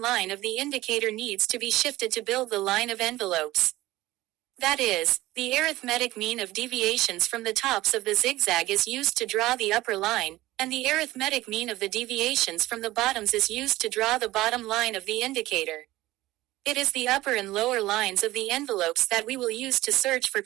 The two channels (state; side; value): quieter; left; 17.3 dB